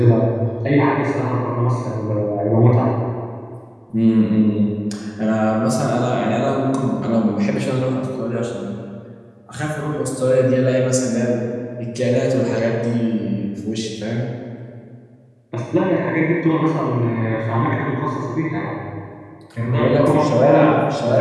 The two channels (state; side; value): identical; both; correlation 1.00